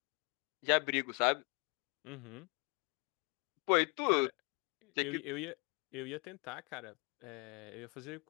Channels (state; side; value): quieter; right; 33.2 dB